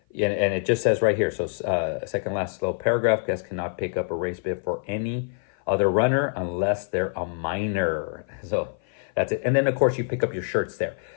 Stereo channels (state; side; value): silent; right; 55 dB below the other